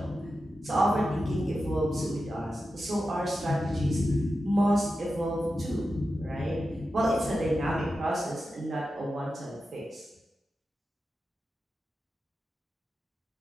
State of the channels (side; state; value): both; normal; correlation 0.91